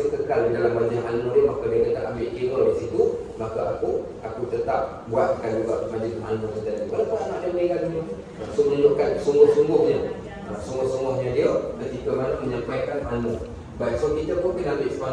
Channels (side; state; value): both; identical; correlation 1.00